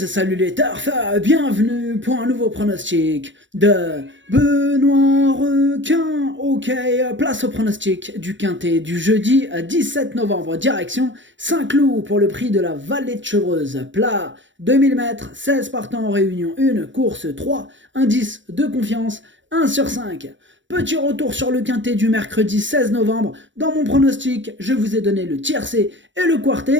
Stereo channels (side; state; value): left; late; 0.54 ms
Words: salut les turfeurs, bienvenue pour un nouveau pronostic de Benoît Requin. Ok, place au pronostic du quintet du jeudi 17 novembre, direction Saint-Cloud pour le prix de la Vallée de Chevreuse. Plat 2000 mètres, 16 partants en réunion 1, course 3, indice de confiance 1 sur 5. Petit retour sur le quintet du mercredi 16 novembre. Dans mon pronostic, je vous ai donné le tiercé et le